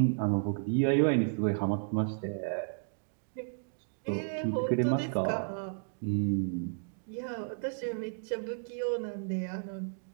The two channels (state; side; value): silent; left; digital silence